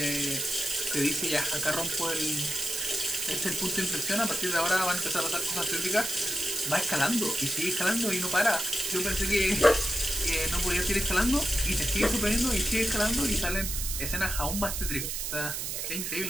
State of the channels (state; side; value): noise; right; hiss, 3 dB below the sound